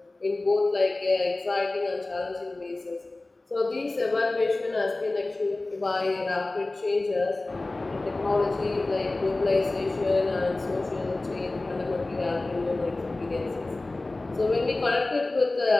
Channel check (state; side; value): quieter; right; 3.0 dB